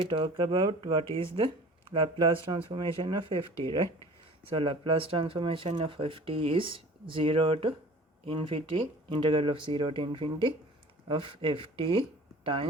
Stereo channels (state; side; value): normal; both; correlation 0.45